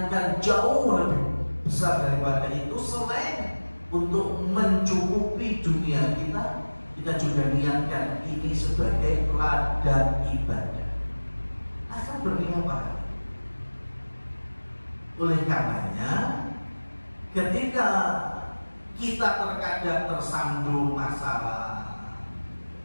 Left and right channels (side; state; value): both; inverted; correlation -1.00